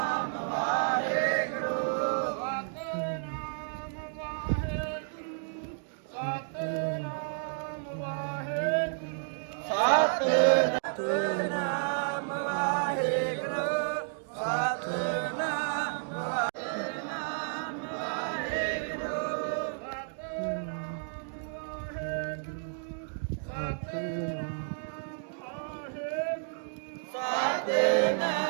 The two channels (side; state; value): left; silent; digital silence